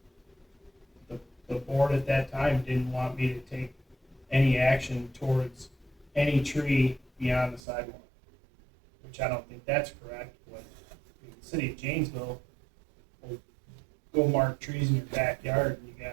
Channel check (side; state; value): left; drops out; at 7.6 s